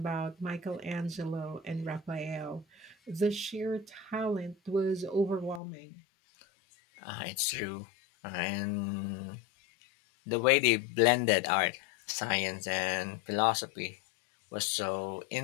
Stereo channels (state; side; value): drops out; right; at 5.6 s